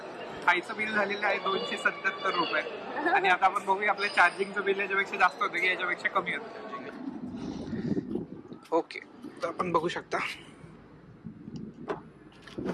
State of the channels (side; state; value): both; identical; correlation 1.00